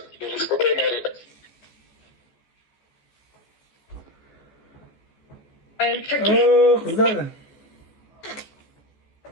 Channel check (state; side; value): late; right; 14 ms